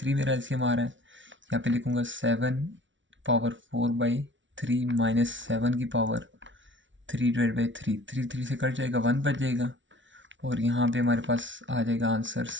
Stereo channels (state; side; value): late; left; 0.55 ms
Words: मेरा एलसीएम आ रहा है। यहाँ पे लिखूँगा 7 पावर 4/3 माइनस 7 की पावर 3/3, 3 3 से कट जाएगा, 1 बच जाएगा, और यहाँ पे हमारे पास आ जाएगा आंसर